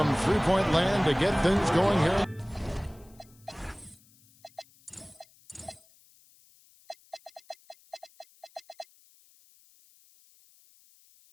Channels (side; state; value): left; noise; hiss, 29 dB below the sound